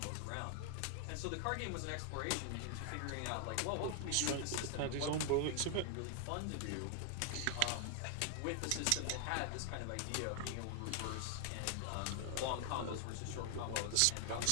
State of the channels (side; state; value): both; different; correlation 0.00